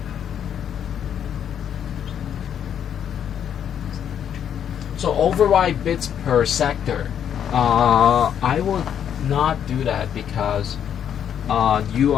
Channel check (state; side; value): quieter; right; 9.0 dB